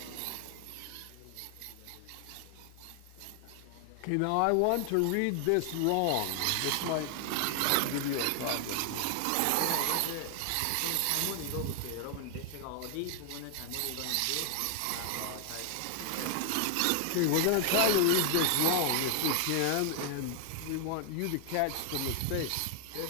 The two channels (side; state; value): both; different; correlation 0.00